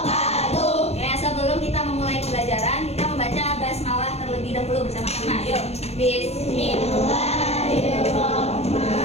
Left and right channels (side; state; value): right; late; 0.31 ms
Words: Ya, sebelum kita memulai pembelajaran, kita membaca basmalah terlebih dahulu bersama-sama. Yuk.